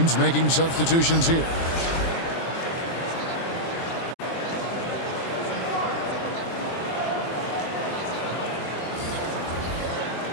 making substitutions here.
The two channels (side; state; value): right; late; 23 ms